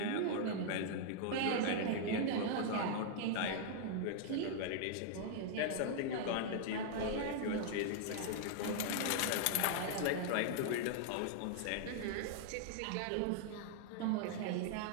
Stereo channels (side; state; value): both; different; correlation -0.01